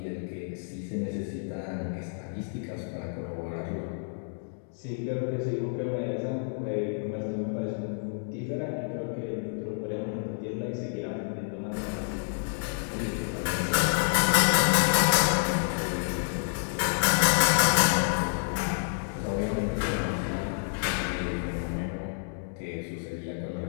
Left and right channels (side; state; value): right; silent; digital silence